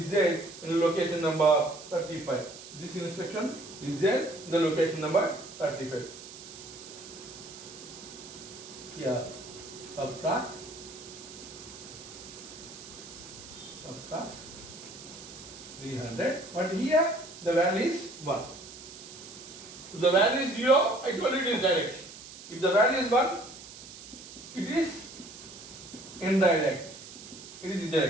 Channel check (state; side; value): noise; right; hiss, 15 dB below the sound